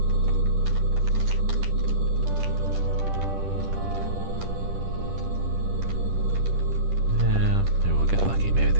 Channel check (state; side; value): late; left; 10 ms